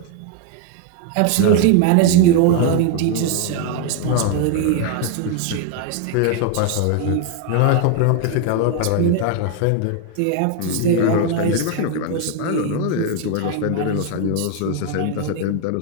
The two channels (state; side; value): different; both; correlation 0.01